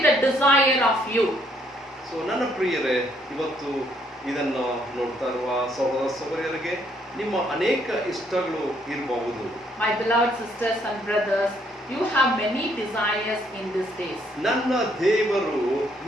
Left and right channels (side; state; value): both; normal; correlation 0.69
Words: the desire of you. So ನನ್ನ ಪ್ರಿಯರೇ, ಇವತ್ತು ಇದನ್ನು ನೋಡ್ತಾ ಇರುವ ಸಹೋದರ ಸಹೋದರಿಯರಿಗೆ ನಿಮ್ಮ ಅನೇಕ ಇಷ್ಟಗಳು ಇರಬಹುದು. My beloved sisters and brothers, you have many desires in these days. ನನ್ನ ದೇವರು